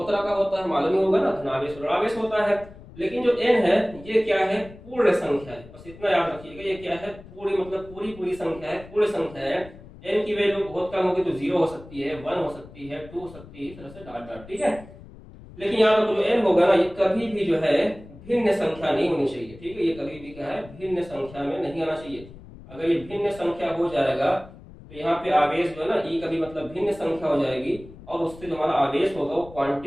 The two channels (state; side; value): noise; left; rumble, 18 dB below the sound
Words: तरह का होता है, मालूम ही होगा ना, धनावेश और ऋणावेश होता है। लेकिन जो n है ये क्या है? पूर्ण संख्या है, बस इतना याद रखिएगा। ये क्या है? पूरी, मतलब पूरी संख्या है, पूर्ण संख्या है। n की वैल्यू बहुत कम होगी तो 0 हो सकती है, 1 हो सकती है, 2 हो सकती है, इस तरह से डॉट डॉट, ठीक है। लेकिन यहाँ पर जो n होगा ना, ये कभी भी जो है भिन्न संख्या नहीं होनी चाहिए, ठीक है। ये कभी भी क्या है? भिन्न संख्या में नहीं आना चाहिए। अगर ये भिन्न संख्या हो जाएगा तो यहाँ पे आवेश जो है ना, ई कभी मतलब भिन्न संख्या हो जाएगी और उससे जो हमारा आवेश होगा वो